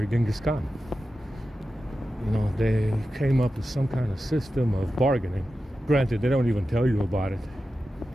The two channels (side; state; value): both; normal; correlation 0.92